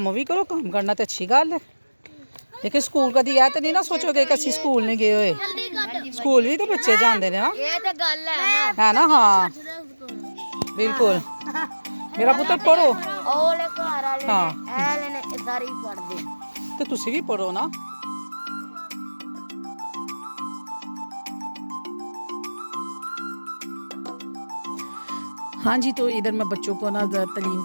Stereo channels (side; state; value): both; inverted; correlation -1.00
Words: भी करो काम करना तो अच्छी गल है लेकिन स्कूल कभी ऐ तो नहीं ना सोचोगे कि असं स्कूल नहीं गए हुए स्कूल भी तो बच्चे जाते हैं ना ये तो गल है ना हाँ बिल्कुल मेरा पुत्र पढ़ो ओले घर वाले हाँ ने सारी पढ़ दे तो तुसी भी पढ़ो ना हाँ जी तो इधर मैं बच्चों को ना तलीम